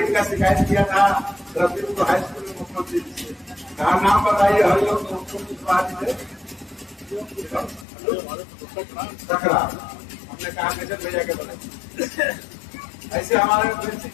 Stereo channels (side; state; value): right; drops out; at 7.9 s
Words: का शिकायत किया था रफीपुर हाई स्कूल में मुख्यमंत्री से, कहा नाम बताइए, हर लोग सकरा, हमने कहा कैसे भैया के बोले ऐसे हमारे